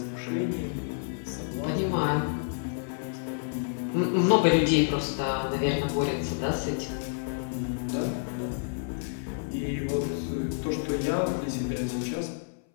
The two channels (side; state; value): right; silent; 59 dB below the other